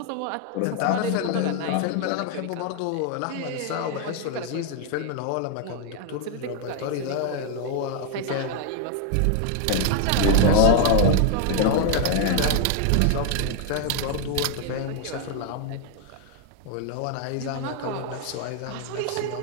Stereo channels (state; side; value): different; both; correlation 0.00